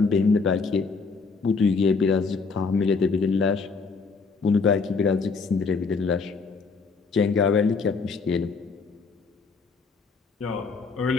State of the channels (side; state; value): right; quieter; 4.6 dB